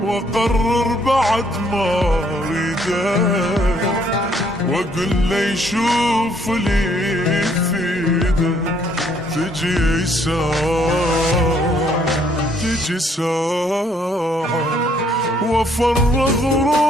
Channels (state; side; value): normal; both; correlation 0.66